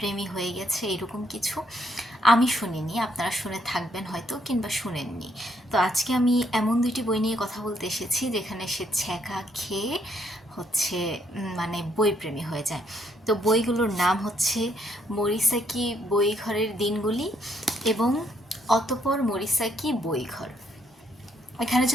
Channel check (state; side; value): normal; both; correlation 0.71